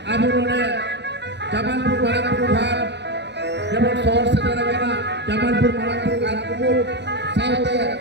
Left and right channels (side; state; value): left; late; 0.50 ms